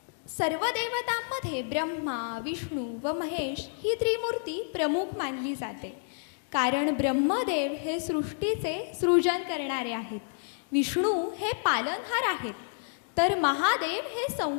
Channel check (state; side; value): silent; right; digital silence